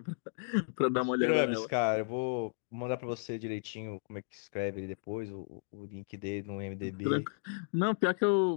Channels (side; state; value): right; silent; digital silence